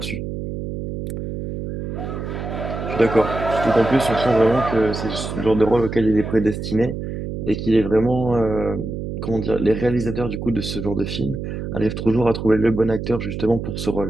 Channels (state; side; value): noise; right; hum, 6 dB below the sound